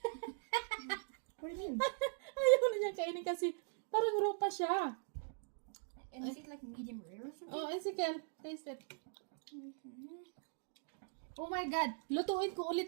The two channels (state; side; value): silent; left; digital silence